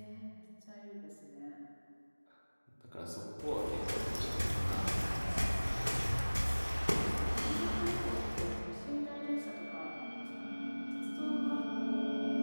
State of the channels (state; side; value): inverted; both; correlation -1.00